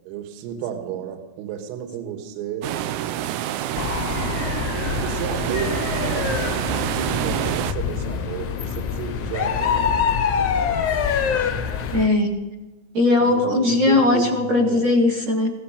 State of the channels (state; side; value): late; left; 17 ms